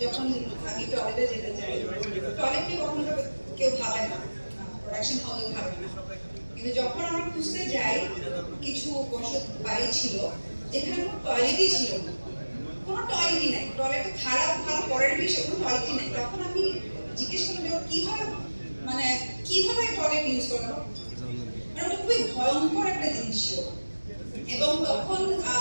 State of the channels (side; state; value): both; inverted; correlation -1.00